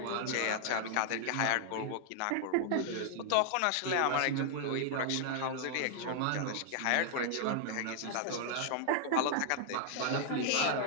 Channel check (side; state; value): both; different; correlation 0.00